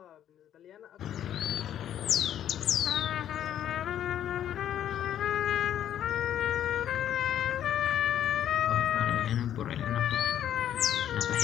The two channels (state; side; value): quieter; right; 10.6 dB